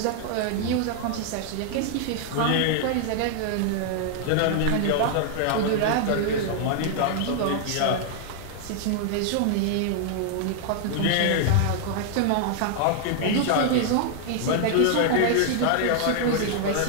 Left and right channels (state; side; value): different; both; correlation 0.00